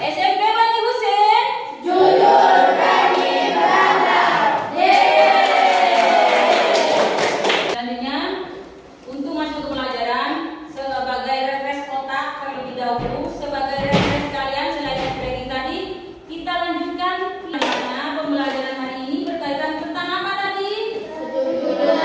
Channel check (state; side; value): identical; both; correlation 1.00